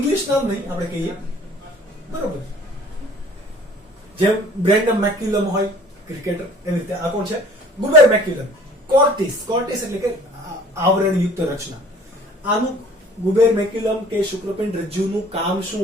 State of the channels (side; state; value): both; normal; correlation 0.51